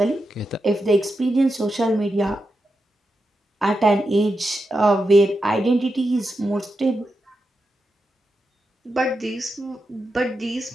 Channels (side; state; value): both; normal; correlation 0.88